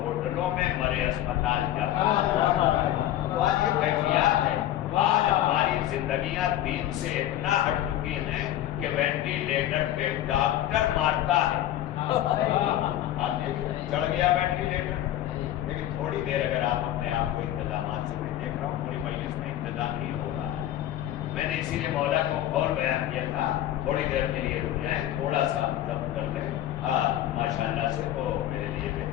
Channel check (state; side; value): quieter; right; 12.8 dB